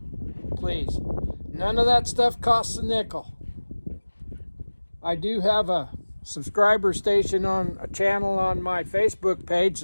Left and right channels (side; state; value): both; inverted; correlation -1.00